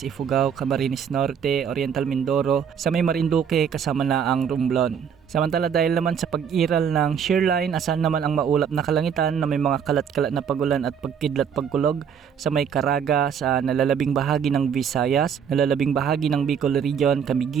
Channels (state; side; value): quieter; left; 7.6 dB